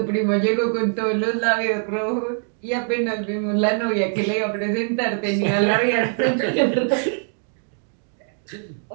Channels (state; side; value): silent; left; 59 dB below the other